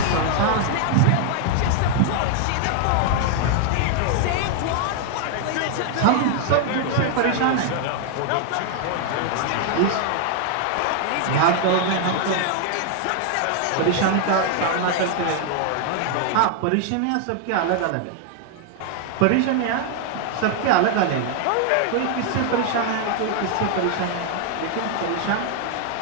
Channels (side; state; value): both; different; correlation 0.00